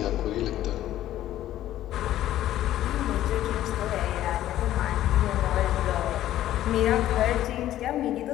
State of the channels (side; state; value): right; quieter; 13.1 dB